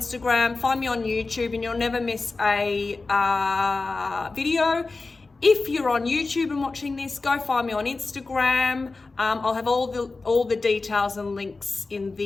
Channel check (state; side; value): quieter; right; 3.7 dB